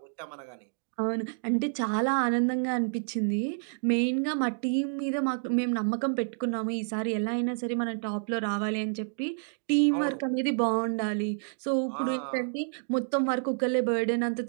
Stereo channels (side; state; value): left; silent; digital silence